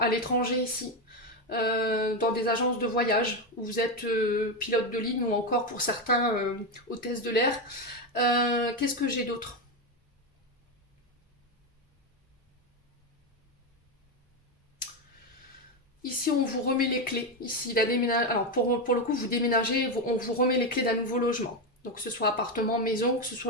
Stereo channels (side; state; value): both; normal; correlation 0.11